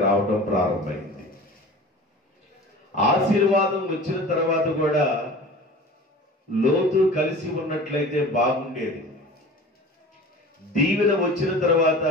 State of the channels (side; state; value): both; normal; correlation 0.39